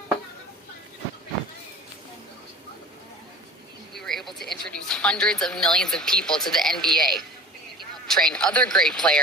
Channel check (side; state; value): both; normal; correlation 0.41